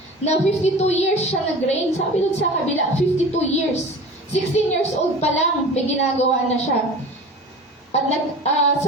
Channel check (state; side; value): normal; both; correlation 0.37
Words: na 52 years siya nag-reign. Sabi doon sa kabila, 52 years. 16 years old pa lang, may ginagawa na siya. At